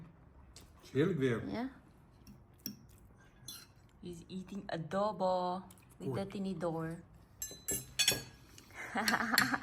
Heerlijk weer. Yeah. He's eating adobo with the tinidor.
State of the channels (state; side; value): identical; both; correlation 1.00